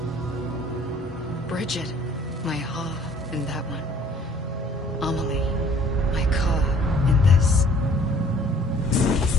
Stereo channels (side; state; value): both; normal; correlation 0.56